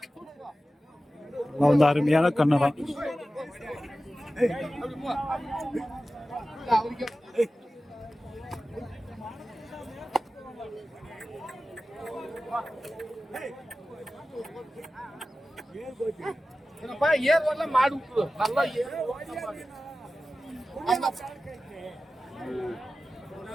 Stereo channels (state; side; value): normal; both; correlation 0.95